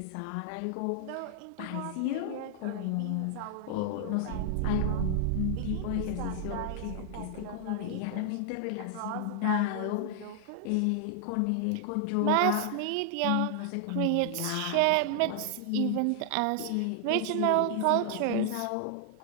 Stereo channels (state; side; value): different; both; correlation 0.00